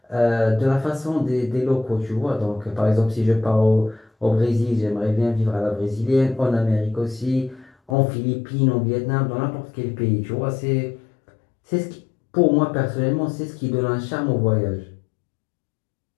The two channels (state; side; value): drops out; right; at 8.0 s